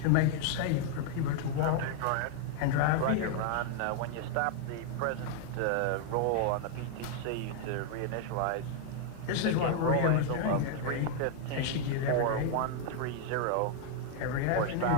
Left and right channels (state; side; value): different; both; correlation 0.00